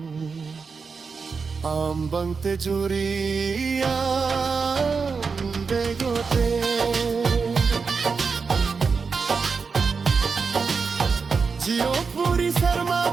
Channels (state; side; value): quieter; left; 5.1 dB